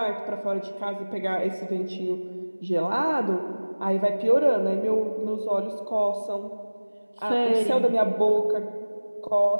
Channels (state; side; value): inverted; both; correlation -1.00